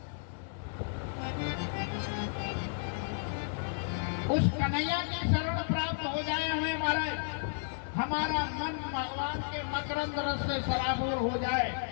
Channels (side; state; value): right; silent; digital silence